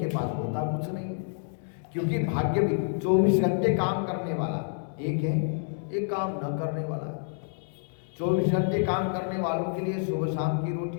पास होता कुछ नहीं, क्योंकि भाग्य भी 24 घंटे काम करने वाला एक है, एक काम न करने वाला। 24 घंटे काम करने वालों के लिए सुबह शाम की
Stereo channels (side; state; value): right; silent; digital silence